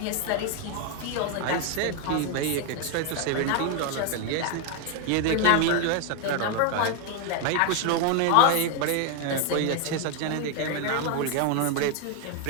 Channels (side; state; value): both; different; correlation 0.01